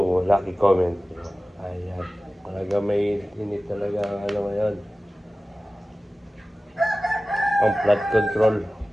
Lucky Comment. Ayan. Talaga may init talaga ang ano ngayon. Ang flood control.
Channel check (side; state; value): both; normal; correlation 0.97